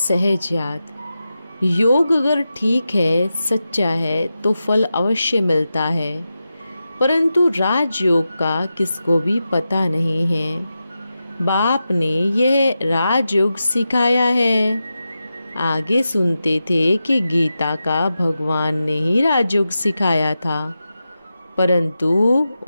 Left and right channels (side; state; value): both; inverted; correlation -0.91